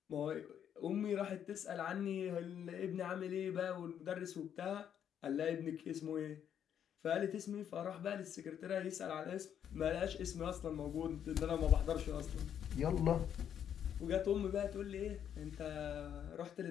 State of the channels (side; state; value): right; quieter; 9.1 dB